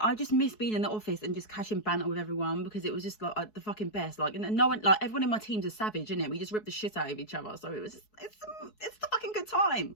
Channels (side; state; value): right; late; 4.7 ms